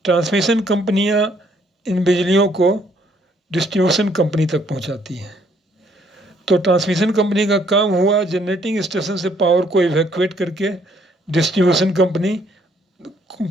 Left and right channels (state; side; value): normal; both; correlation 0.66